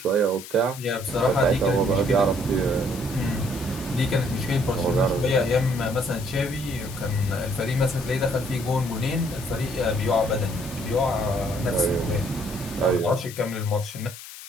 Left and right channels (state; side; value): noise; left; hiss, 14 dB below the sound